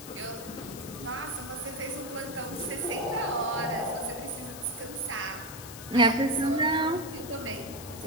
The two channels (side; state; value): left; noise; hiss, 13 dB below the sound